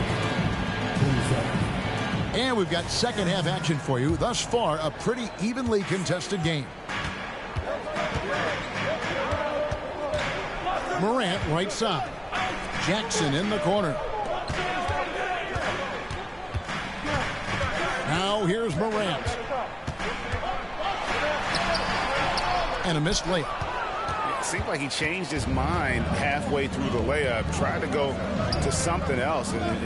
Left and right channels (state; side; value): identical; both; correlation 1.00